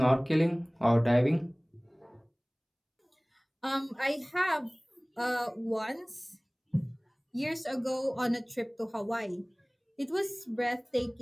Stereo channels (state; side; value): identical; both; correlation 1.00